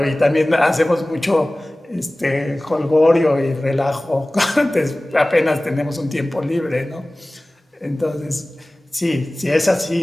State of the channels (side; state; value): both; normal; correlation 0.98